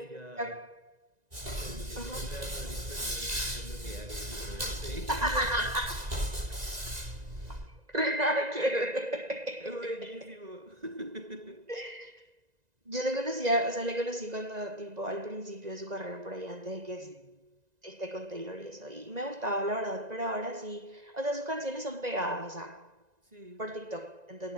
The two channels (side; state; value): left; late; 1.9 ms